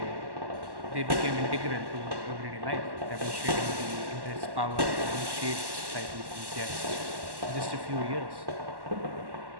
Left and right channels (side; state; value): left; late; 1.1 ms